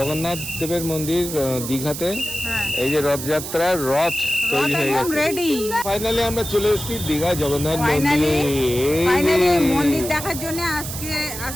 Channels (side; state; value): right; noise; hiss, 8 dB below the sound